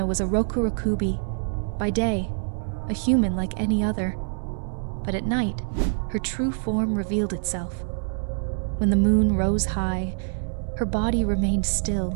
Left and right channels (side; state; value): left; silent; 62 dB below the other